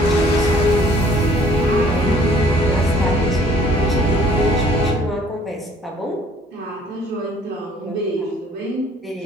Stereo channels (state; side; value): normal; both; correlation 0.58